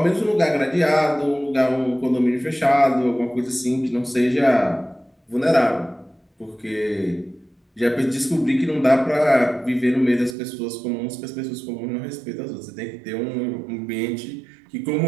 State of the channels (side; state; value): left; drops out; at 10.4 s